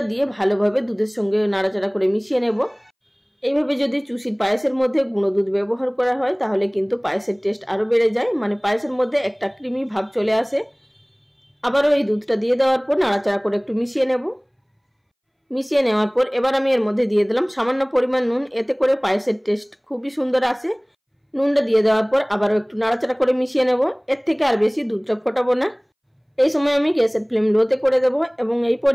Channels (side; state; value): both; identical; correlation 1.00